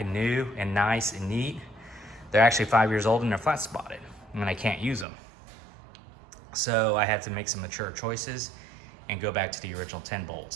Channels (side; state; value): left; drops out; at 5.1 s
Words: new and nice and neat, they're actually 5 years old and they're flat spotted, and I can't use them. So I had to make some mature choices and go back to the original 10